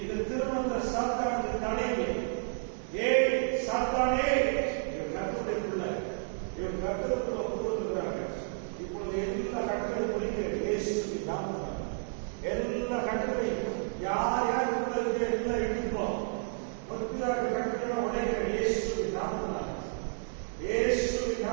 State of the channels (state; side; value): silent; left; digital silence